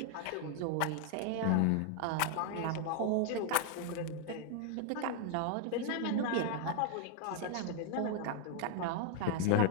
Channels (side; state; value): both; different; correlation 0.00